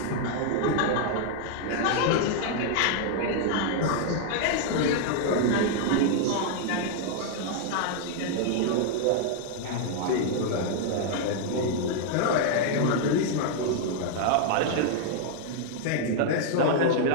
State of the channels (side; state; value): both; different; correlation 0.00